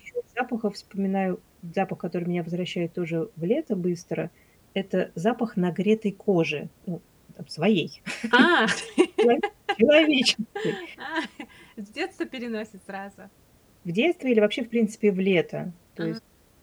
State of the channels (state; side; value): identical; both; correlation 1.00